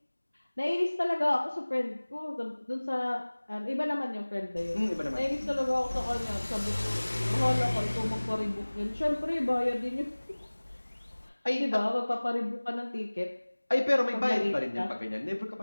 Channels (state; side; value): inverted; both; correlation -1.00